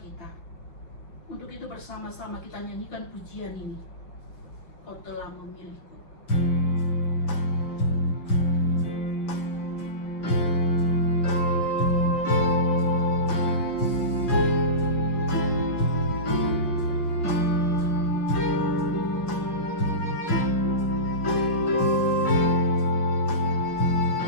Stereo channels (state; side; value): late; right; 5.8 ms